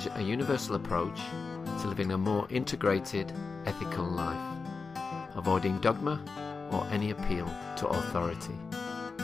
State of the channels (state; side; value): quieter; right; 4.6 dB